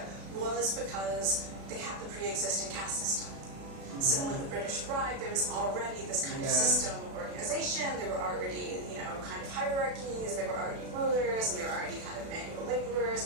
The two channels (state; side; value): late; left; 36 ms